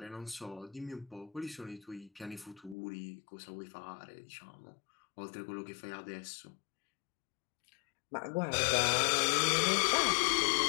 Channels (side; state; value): right; drops out; at 2.8 s